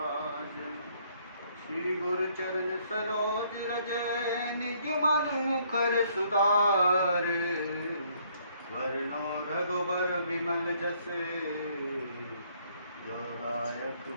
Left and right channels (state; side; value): inverted; both; correlation -0.66